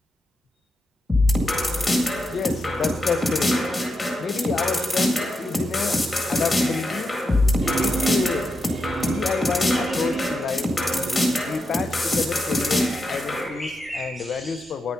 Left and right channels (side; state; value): both; normal; correlation 0.86